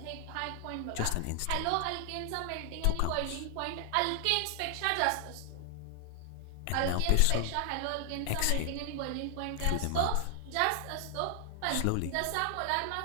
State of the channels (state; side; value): different; both; correlation 0.00